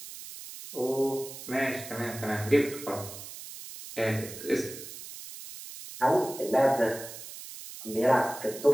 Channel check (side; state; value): right; noise; hiss, 12 dB below the sound